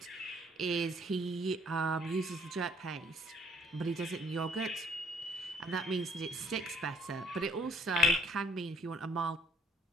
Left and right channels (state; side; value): normal; both; correlation 0.64